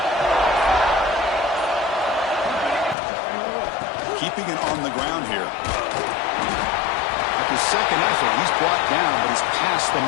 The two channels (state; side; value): drops out; right; at 3.0 s